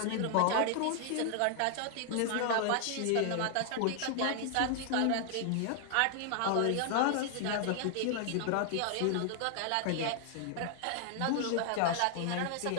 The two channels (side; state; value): both; different; correlation 0.00